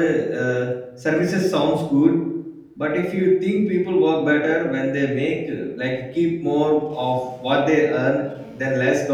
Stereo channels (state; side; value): identical; both; correlation 1.00